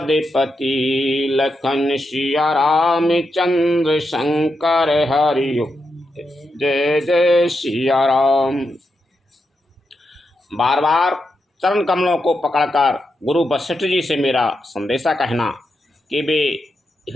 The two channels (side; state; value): both; normal; correlation 0.85